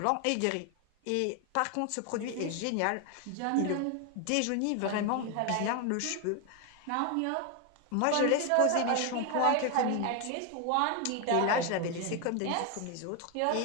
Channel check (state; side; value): different; both; correlation 0.01